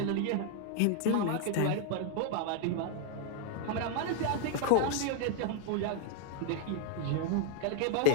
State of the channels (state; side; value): different; both; correlation 0.00